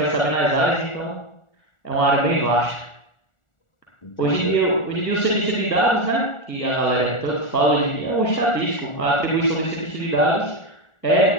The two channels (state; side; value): late; right; 1.4 ms